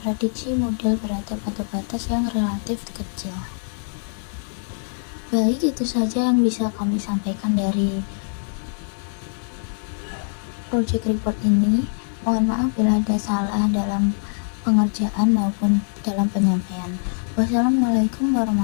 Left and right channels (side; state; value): right; silent; digital silence